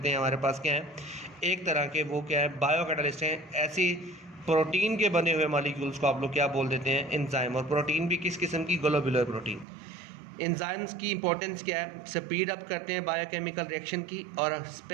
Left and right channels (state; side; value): drops out; left; at 9.7 s